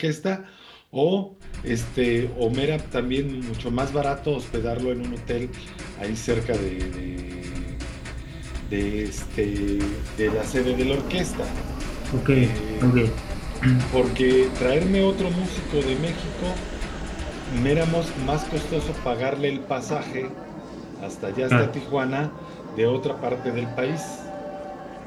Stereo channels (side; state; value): both; identical; correlation 1.00